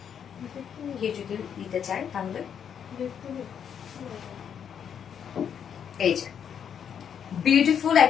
কেউ যদি নিতে চায় তাহলে এই যে বিউটিফুল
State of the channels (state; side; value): quieter; right; 8.2 dB